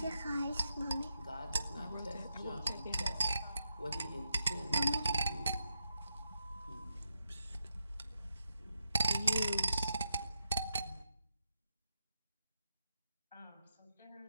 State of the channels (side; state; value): both; inverted; correlation -0.86